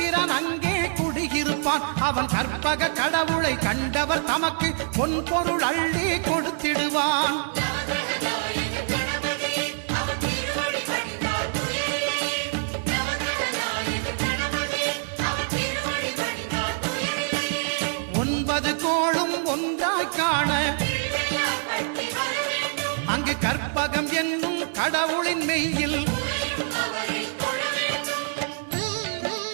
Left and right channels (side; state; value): left; silent; 60 dB below the other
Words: அங்கே குடியிருப்பான். அவன் கற்பக கடவுளை கண்டவர் தமக்கு பொன் பொருள் அள்ளி கொடுத்திடுவான். ஒன்பது கோளும் ஒன்றாய் காண அங்கு கற்பகம் என்னும் கடவுளின் மெய்யில்